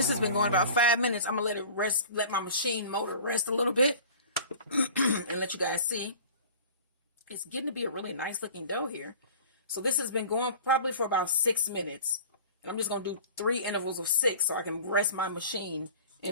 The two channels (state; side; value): inverted; both; correlation -0.42